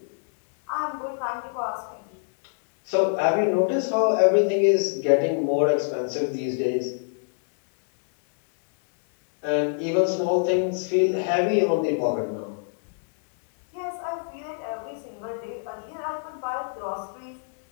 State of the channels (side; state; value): right; silent; 62 dB below the other